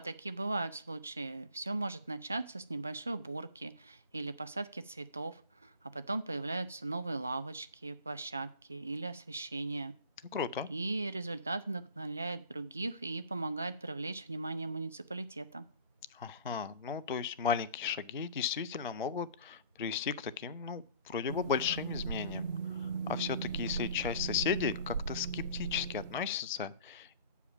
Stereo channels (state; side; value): inverted; both; correlation -0.44